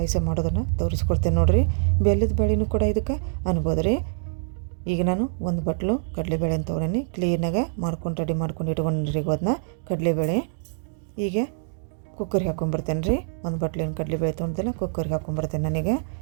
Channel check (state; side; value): silent; left; digital silence